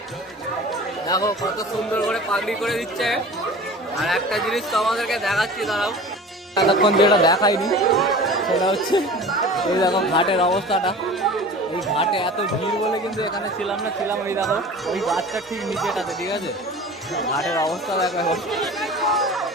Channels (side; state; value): both; normal; correlation 0.39